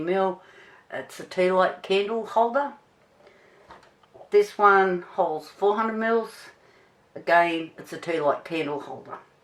It's a tea light candle holder. This one holds 400ml. Again, it's a tea light candle holder.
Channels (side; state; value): both; identical; correlation 1.00